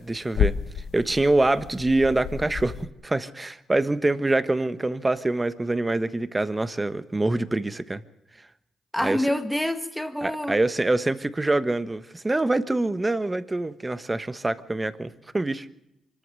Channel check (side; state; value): both; normal; correlation 0.95